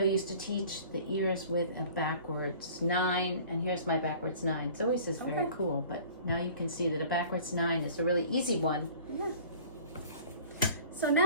used to teach the ears with a backwards 9, and here's my backwards 9. It's always is very cool, but now you can see that a backwards 9 is a really easy one. Yeah. So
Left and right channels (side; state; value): both; inverted; correlation -0.47